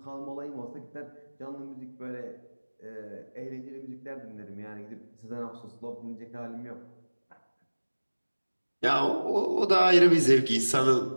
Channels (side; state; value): both; inverted; correlation -1.00